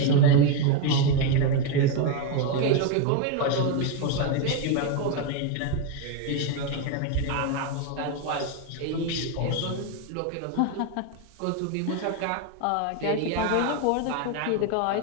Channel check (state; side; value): different; both; correlation 0.02